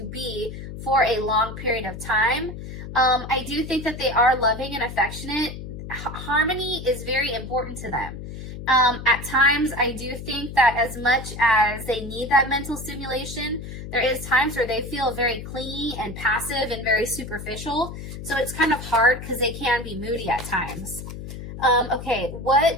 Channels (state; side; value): noise; left; hum, 10 dB below the sound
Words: be for a long period of time. I do think that they are loving and affectionate. Harmony is very important to them. At times, I do think that as much as they need that mental stimulation, there is times where they feel very clingy and passive and very superficial. So it's kind of hard because they can be moody at times. Okay,